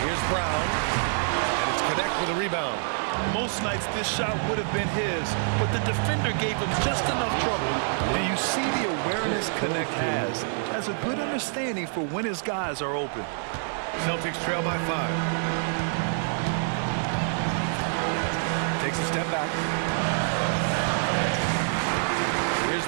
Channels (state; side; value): silent; left; digital silence